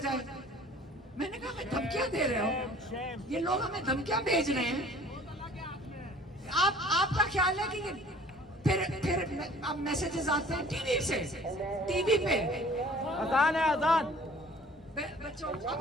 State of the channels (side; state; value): both; normal; correlation 0.50